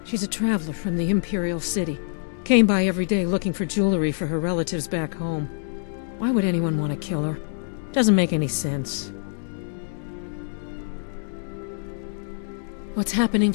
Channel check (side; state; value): right; silent; digital silence